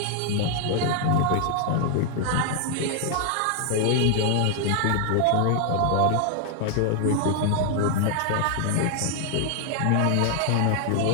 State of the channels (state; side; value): different; both; correlation 0.00